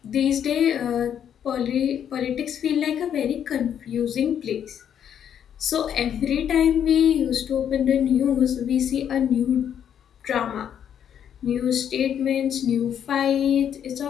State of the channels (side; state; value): right; quieter; 9.1 dB